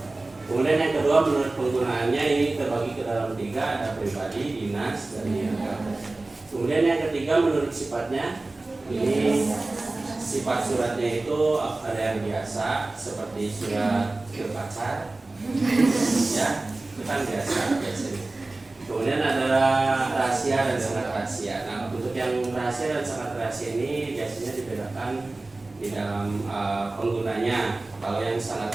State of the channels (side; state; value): left; quieter; 3.1 dB